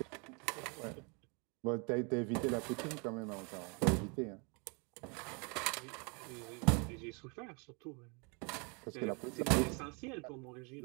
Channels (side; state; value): left; quieter; 33.4 dB